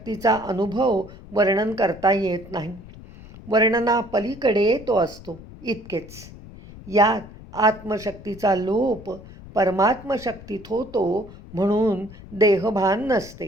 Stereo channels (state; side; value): noise; left; rumble, 17 dB below the sound